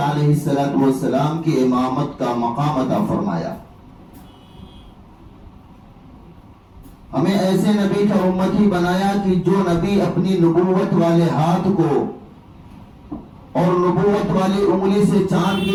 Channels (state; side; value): identical; both; correlation 1.00